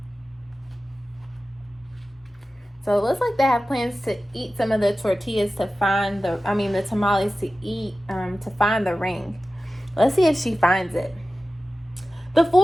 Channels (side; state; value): both; normal; correlation 0.95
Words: So it looks like they have plans to eat some of the tortillas to find the tamales to eat, to find the ring. Let's see if she finds it. The